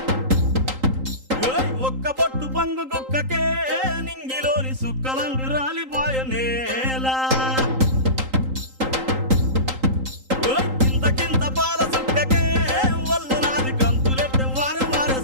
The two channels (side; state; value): left; late; 3.8 ms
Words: ఒక్క పొట్టు పంగు కుక్కకే నింగిలోని సుక్కలంగు రాలిపోయ నేల కింత పాల సుక్కకే ఒళ్ళు నాది గంతులెట్టే వాడే వాడే